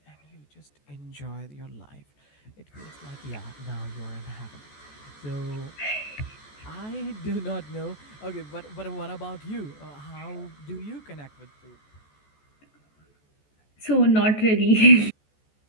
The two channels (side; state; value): right; late; 14 ms